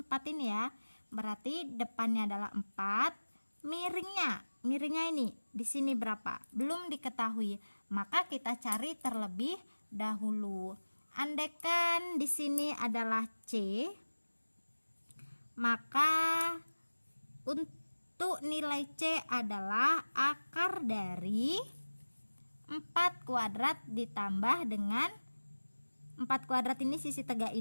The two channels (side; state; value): both; inverted; correlation -1.00